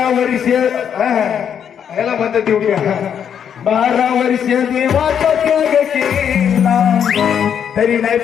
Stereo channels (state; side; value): quieter; right; 8.3 dB